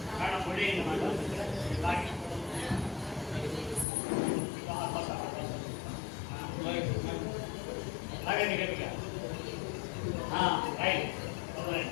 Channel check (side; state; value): right; drops out; at 3.9 s